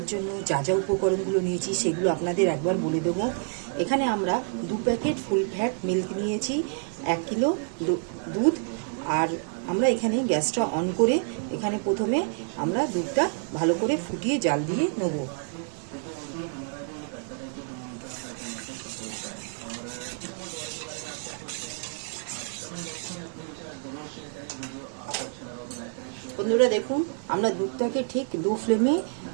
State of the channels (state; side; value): silent; left; 59 dB below the other